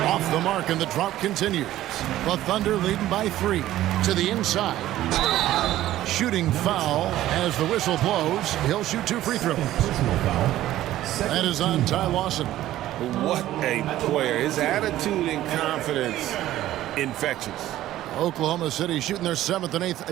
Off the mark, and the drop continues. The Thunder leading by 3 to the inside. Shooting foul as the whistle blows. He'll shoot 2 free throws. That is on Ty Lawson. What a player. His attitude and confidence, infectious. Oklahoma City shooting their 7th and 8th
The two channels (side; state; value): left; quieter; 14.1 dB